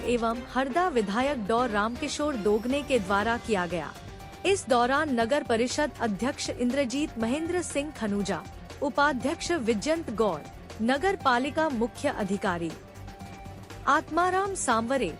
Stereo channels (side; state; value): both; identical; correlation 1.00